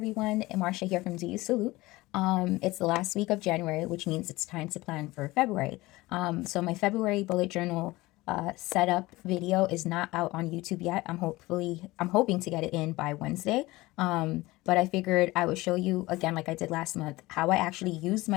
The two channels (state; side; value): quieter; right; 20.0 dB